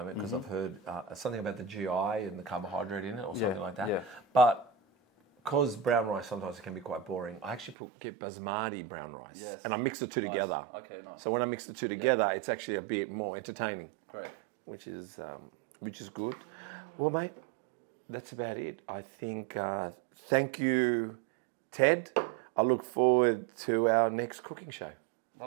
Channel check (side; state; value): left; drops out; at 7.8 s